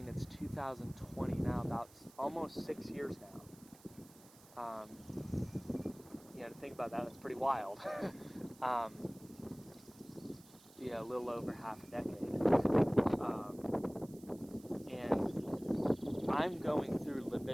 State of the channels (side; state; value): right; noise; hiss, 23 dB below the sound